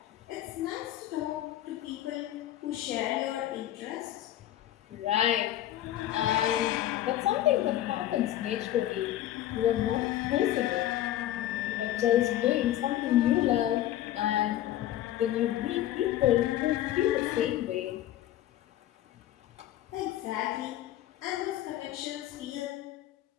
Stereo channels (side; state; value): right; quieter; 13.1 dB